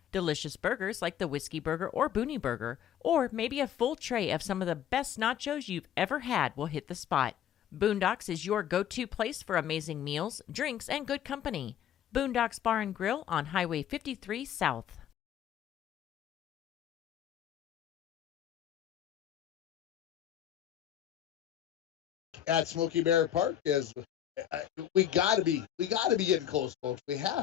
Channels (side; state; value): right; quieter; 10.4 dB